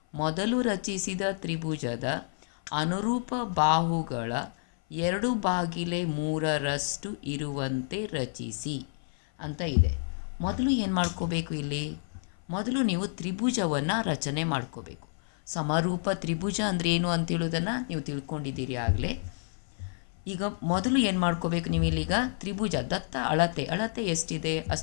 ಮೊದಲು ರಚಿಸಿದ ತ್ರಿಭುಜದ ಅನುರೂಪ ಬಾಹುಗಳ 2/3 ಇರುವಂತೆ ರಚಿಸಿ ಅಂತ ಇದೆ. ಮೊದಲು ಏನು ಮಾಡ್ಕೋಬೇಕು? ಮೊದಲು ನೀವು ತ್ರಿಭುಜವನ್ನು ರಚನೆ ಮಾಡ್ಕೋಬೇಕು. ಸಮರೂಪ ತ್ರಿಭುಜ ಅಂದರೆ ಏನು ಅಂತೇಳೋದನ್ನು ನೀವು ತಿಳ್ಕೊಂಡಿದ್ದೀರಿ ಆಗಲೇ. ಈಗ ಮೊದಲು ಏನು ಮಾಡ್ಕೋಬೇಕು ನೀವು? ಇಲ್ಲಿಗ ತ್ರಿಭುಜ ದತ್ತ ಅಳತೆ ಎಷ್ಟಿದೆ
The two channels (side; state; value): right; silent; 56 dB below the other